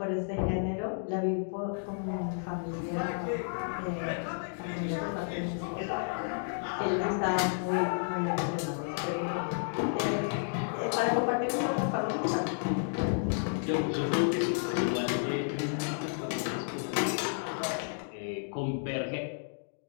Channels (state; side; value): silent; right; digital silence